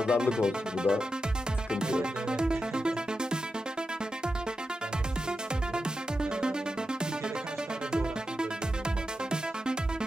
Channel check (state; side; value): normal; both; correlation 0.89